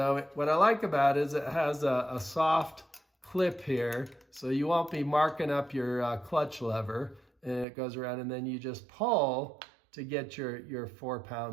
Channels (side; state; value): left; drops out; at 7.7 s